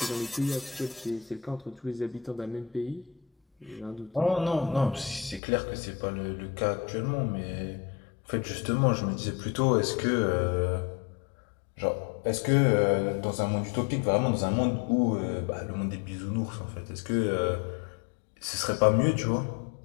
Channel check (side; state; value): right; drops out; at 5.4 s